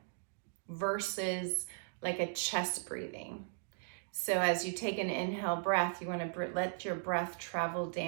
versus like a chest breathing. So as you take an inhale breath, you want to let your breath travel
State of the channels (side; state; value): left; silent; digital silence